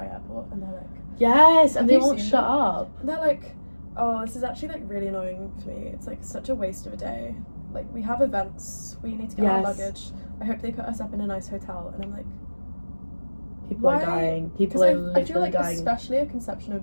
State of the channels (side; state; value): both; inverted; correlation -1.00